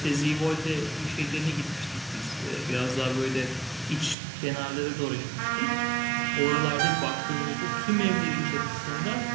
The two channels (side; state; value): left; drops out; at 4.2 s